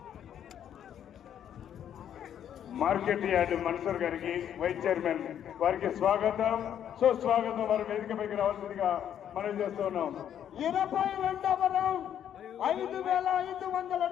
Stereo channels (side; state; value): right; quieter; 9.7 dB